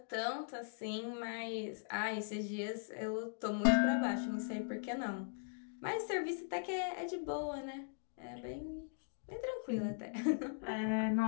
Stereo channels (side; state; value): right; silent; digital silence